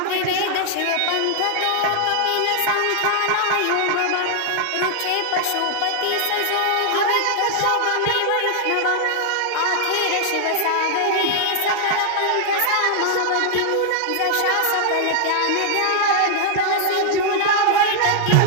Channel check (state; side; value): different; both; correlation -0.01